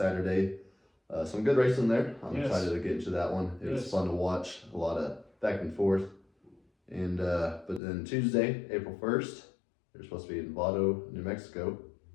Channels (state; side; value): drops out; right; at 7.8 s